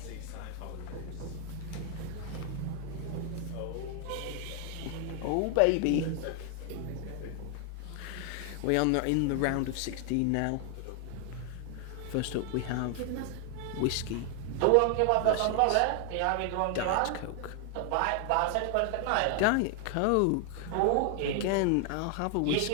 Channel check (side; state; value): both; different; correlation 0.00